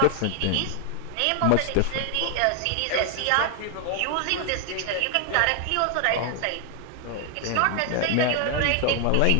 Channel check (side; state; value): both; different; correlation 0.00